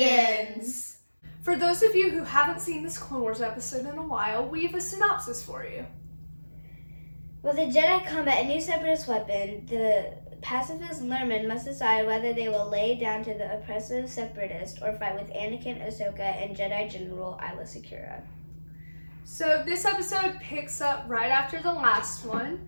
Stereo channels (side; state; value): both; inverted; correlation -1.00